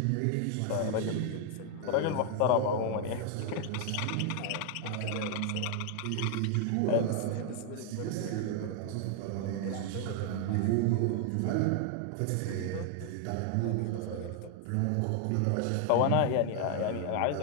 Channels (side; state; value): both; different; correlation 0.00